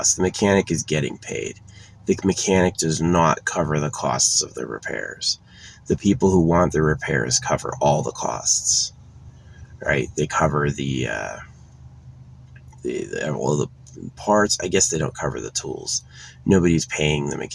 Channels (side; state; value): both; identical; correlation 1.00